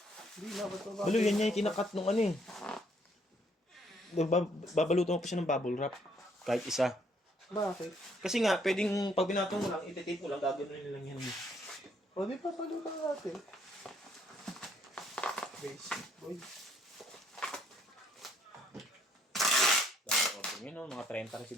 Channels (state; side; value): normal; both; correlation 0.67